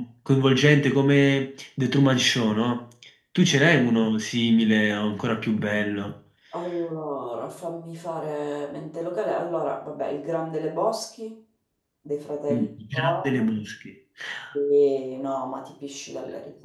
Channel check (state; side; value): identical; both; correlation 1.00